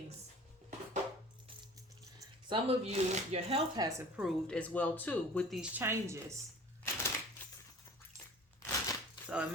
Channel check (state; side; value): normal; both; correlation 0.45